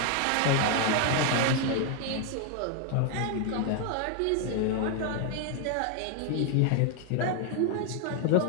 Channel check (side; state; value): both; different; correlation 0.00